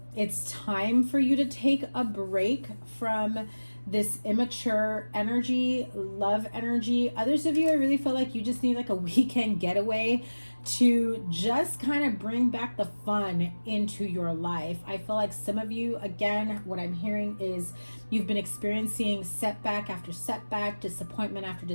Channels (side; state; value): both; inverted; correlation -1.00